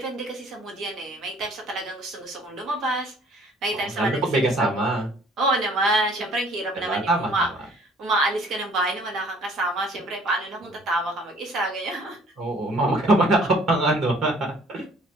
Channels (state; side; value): normal; both; correlation 0.56